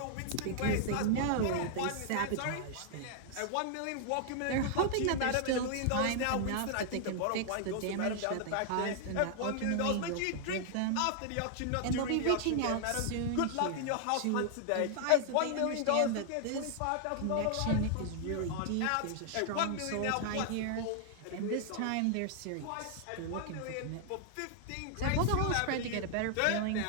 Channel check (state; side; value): different; both; correlation 0.00